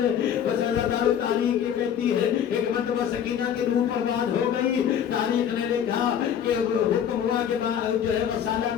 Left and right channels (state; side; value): quieter; right; 8.9 dB